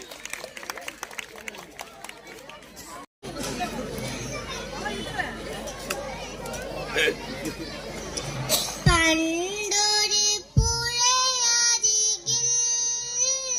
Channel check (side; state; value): both; identical; correlation 1.00